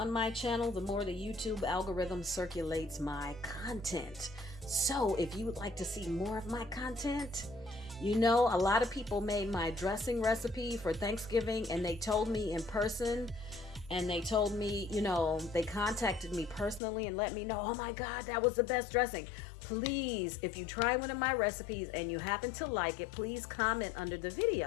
my channel, the more the YouTube algorithm circulates my content. So if you would like to see more of my content, you know, a lot of people made my dressing recipe for Thanksgiving, and they told me in person, and they told me, you know, they contacted me personally and let me know, oh my God, that was the best dressing. Please, if you try one of my recipes and you happen to like it, please comment under the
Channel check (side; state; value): right; drops out; at 16.8 s